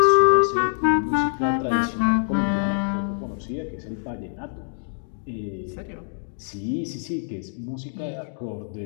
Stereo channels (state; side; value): silent; right; digital silence